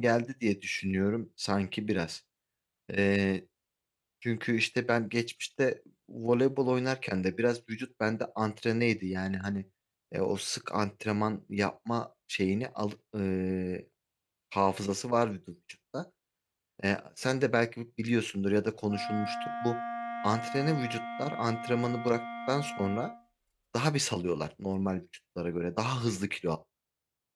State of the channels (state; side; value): identical; both; correlation 1.00